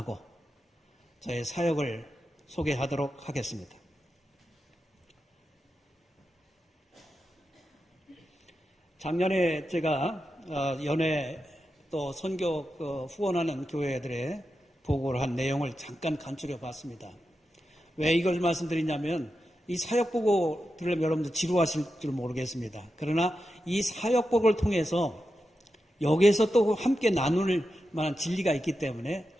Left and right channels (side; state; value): both; normal; correlation 0.89